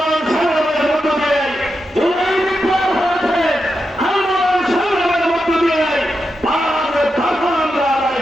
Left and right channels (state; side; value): normal; both; correlation 0.87